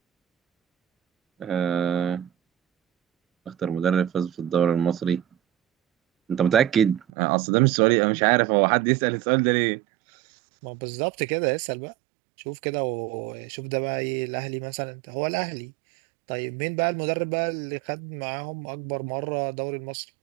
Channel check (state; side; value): drops out; left; at 7.1 s